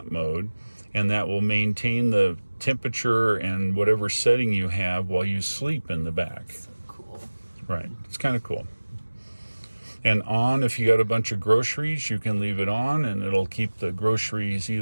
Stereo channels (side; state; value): both; inverted; correlation -1.00